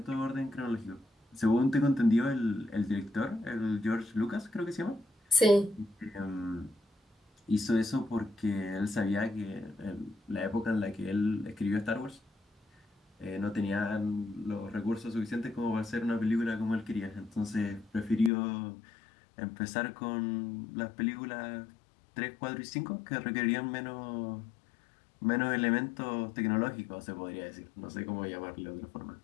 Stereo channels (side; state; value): right; drops out; at 18.3 s